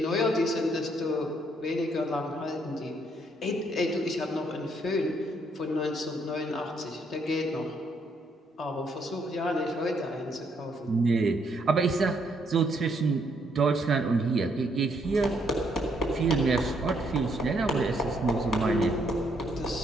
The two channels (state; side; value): normal; both; correlation 0.72